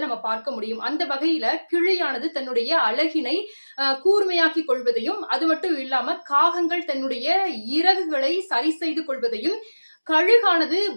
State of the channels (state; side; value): inverted; both; correlation -1.00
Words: நம்ம பார்க்க முடியும். அந்த வகையில கிளியானது தன்னுடைய அழகினை கூர்மையாக்கிக் கொள்வதையும், அது மட்டும் இல்லாம காகங்கள் தன்னுடைய இறகுகளை சரி செய்து கொள்வதையும், கழுகானது